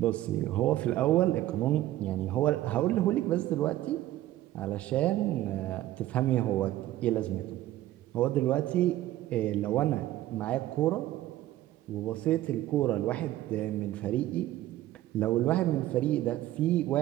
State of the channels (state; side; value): quieter; left; 14.6 dB